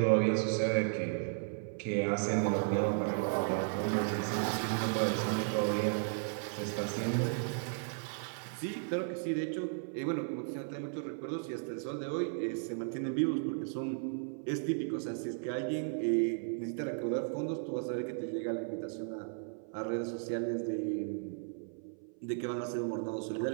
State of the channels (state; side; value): silent; left; 54 dB below the other